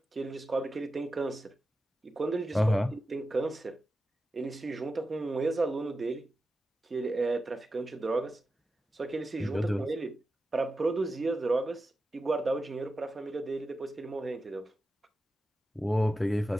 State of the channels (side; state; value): both; normal; correlation 0.91